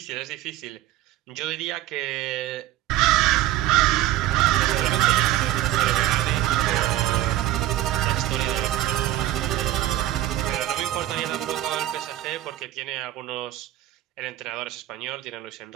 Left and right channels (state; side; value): quieter; left; 14.2 dB